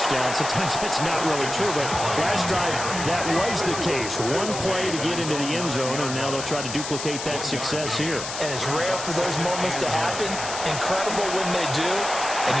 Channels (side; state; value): left; noise; hiss, 7 dB below the sound